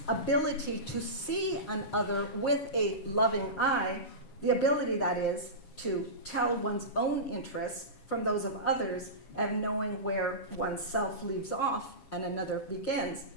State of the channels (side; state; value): right; late; 7.2 ms